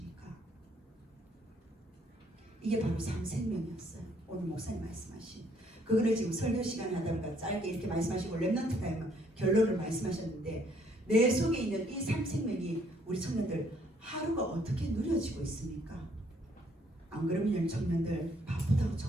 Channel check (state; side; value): normal; both; correlation 0.66